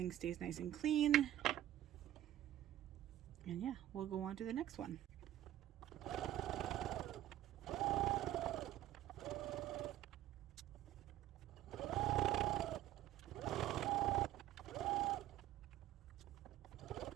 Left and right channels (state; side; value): quieter; left; 13.0 dB